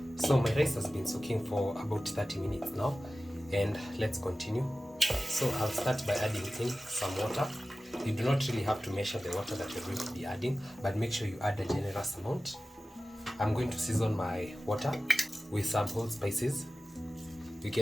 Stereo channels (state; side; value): normal; both; correlation 0.95